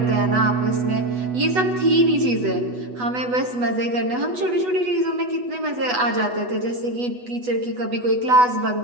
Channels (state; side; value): late; left; 8.1 ms